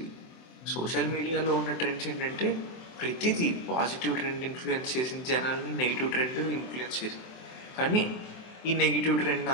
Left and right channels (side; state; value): right; late; 23 ms